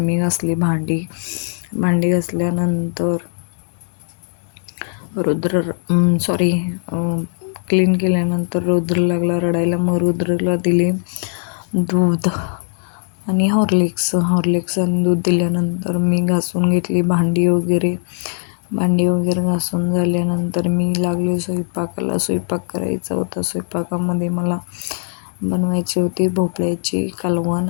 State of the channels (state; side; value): silent; right; 62 dB below the other